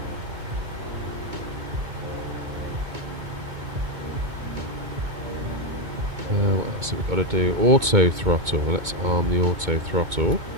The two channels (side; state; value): left; late; 2.2 ms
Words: What else have we got to do? Auto throttle. Let's arm the auto throttle.